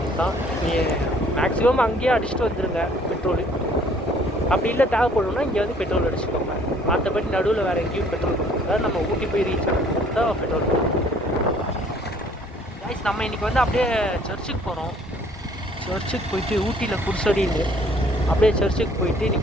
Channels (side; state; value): both; normal; correlation 0.58